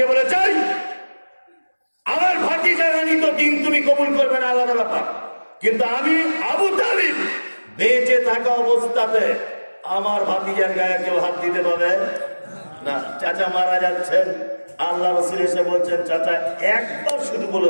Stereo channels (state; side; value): inverted; both; correlation -1.00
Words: বলে চাই আমার ভাতিজা রানী তো দিন তুমি কবুল করবে না, আলাদা ব্যাপার, কিন্তু আমি আবু তালিব বেঁচে থাকা অবস্থাতে আমার ভাতিজার গায়ে কেউ হাত দিতে পারবে না। চাচা মারা যাচ্ছেন, আল্লাহ রাসূল এসে বলছেন চাচা একবার শুধু বলে